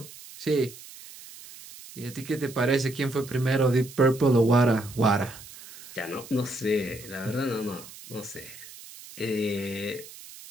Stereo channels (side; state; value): right; noise; hiss, 17 dB below the sound